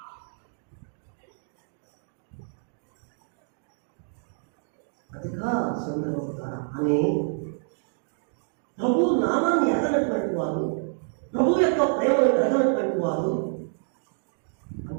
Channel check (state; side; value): silent; left; digital silence